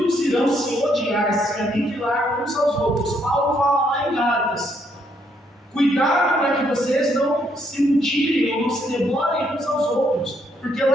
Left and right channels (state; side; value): normal; both; correlation 0.72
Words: irão se odiar, se aniquilar uns aos outros. Paulo fala lá em Gálatas: cuidado para que vocês não se mutilem ou não se devorem uns aos outros, porque